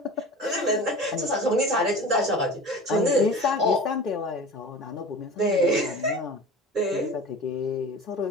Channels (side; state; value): both; normal; correlation 0.36